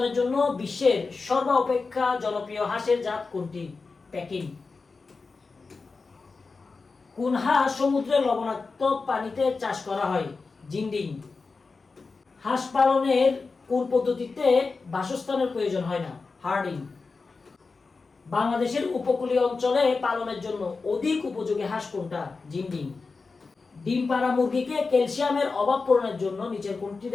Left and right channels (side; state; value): right; quieter; 4.3 dB